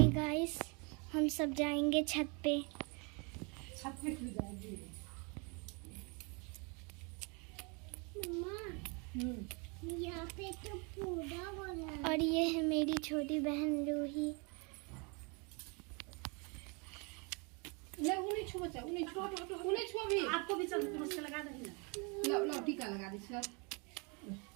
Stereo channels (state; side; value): quieter; left; 32.5 dB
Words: गाइस हम सब जाएंगे छत पे। छत पे क्यों जाएंगे? यहाँ पे तो पूरा हो रहा है। और ये है मेरी छोटी बहन रूही। उन्हें छुआ बच्चा, उन्हें छुआ भी। आपको भी चल नमस्कार लगा देना। लो टीका लगा दे सर।